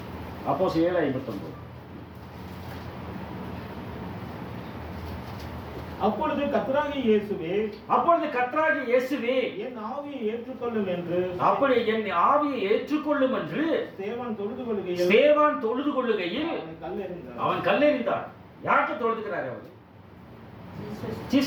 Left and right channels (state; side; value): identical; both; correlation 1.00